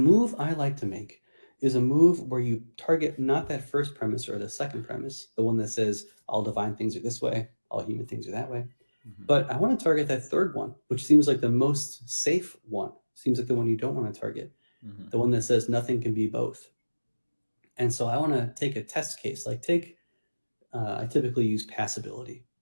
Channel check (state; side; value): inverted; both; correlation -1.00